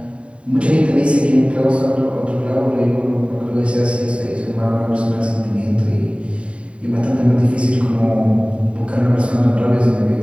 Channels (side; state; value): left; late; 0.060 ms